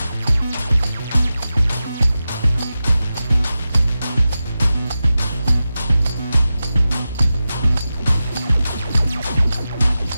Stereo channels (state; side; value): inverted; both; correlation -0.93